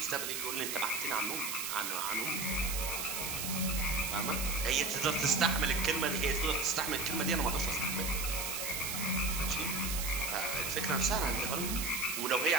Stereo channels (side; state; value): right; noise; hiss, 3 dB below the sound